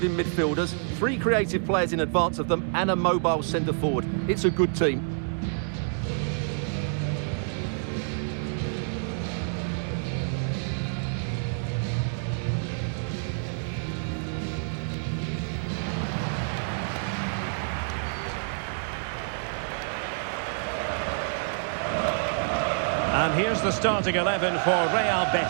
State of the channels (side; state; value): left; silent; digital silence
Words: midfielders, three creative players in advance of them, and a mobile centre-forward. It's a good team. And here's the starting 11 for Real